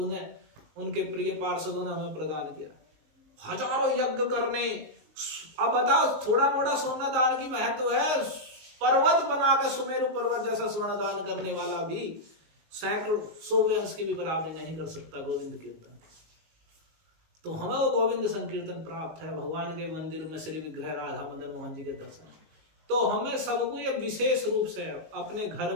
ने, उनके प्रिय पार्षदों ने हमें प्रदान किया। हजारों यज्ञ करने, अब बताओ थोड़ा मोड़ा सोना दान की महत्व है, पर्वत बना के सुमेरु पर्वत जैसा स्वर्ण दान करने वाला भी सैकड़ों 100 अंश की भी बराबरी नहीं कर सकता गोविंद कीर्तन। तो हमें वो गोविंद संकीर्तन प्राप्त है, भगवान के मंदिर में श्री विग्रह राधा मदन मोहन जी के दर्शन। तो हमें सबको ये विशेष रूप से अपने घर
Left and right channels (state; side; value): late; left; 19 ms